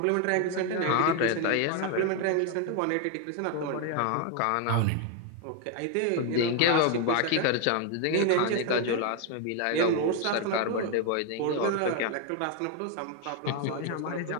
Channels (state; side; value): different; both; correlation 0.01